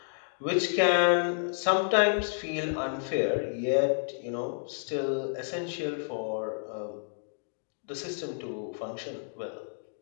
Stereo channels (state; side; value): silent; right; digital silence